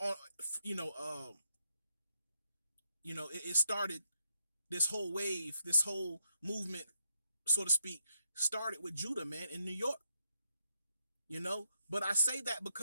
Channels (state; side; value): inverted; both; correlation -0.81